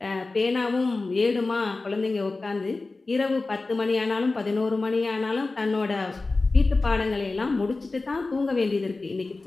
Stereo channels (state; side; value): quieter; right; 3.5 dB